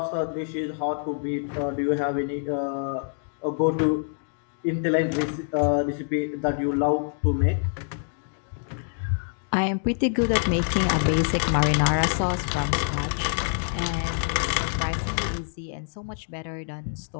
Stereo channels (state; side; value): silent; right; digital silence